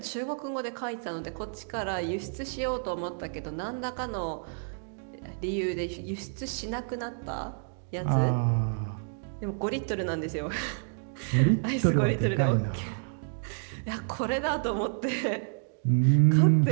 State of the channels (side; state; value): left; silent; digital silence